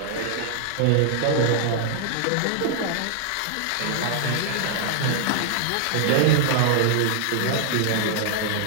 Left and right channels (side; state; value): both; different; correlation -0.01